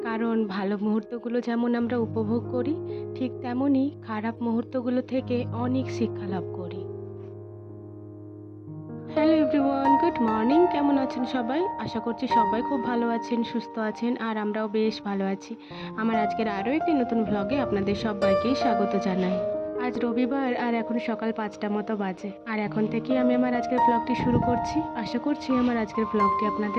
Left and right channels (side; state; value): both; identical; correlation 1.00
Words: কারণ ভালো মুহূর্তগুলো যেমন আমরা উপভোগ করি, ঠিক তেমনই খারাপ মুহূর্তগুলো থেকে অনেক শিক্ষা লাভ করি। Hello everyone, good morning. কেমন আছেন সবাই? আশা করছি সবাই খুব ভালো আছেন, সুস্থ আছেন, আর আমরাও বেশ ভালো আছি। আমার আজকের আরও একটি নতুন ভ্লগে আপনাদের সবাইকেই স্বাগত জানাই। আজ রবিবার আর এখন সকাল ৫টা মতো বাজে, আর এখন থেকেই আমি আমার আজকের ভ্লগটি শুরু করছি। আশা করছি আমার আজকের ভ্লগটি